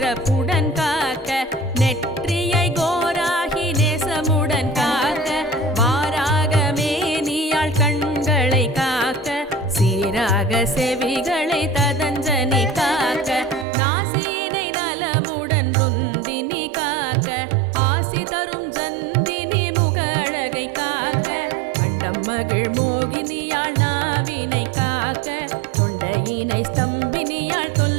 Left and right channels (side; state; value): left; drops out; at 13.7 s